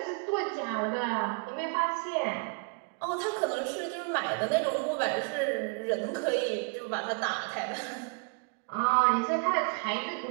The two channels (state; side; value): quieter; left; 35.7 dB